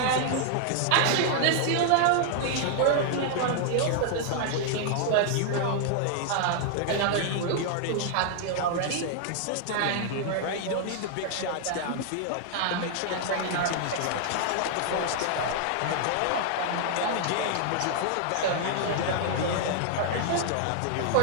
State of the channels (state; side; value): different; both; correlation -0.01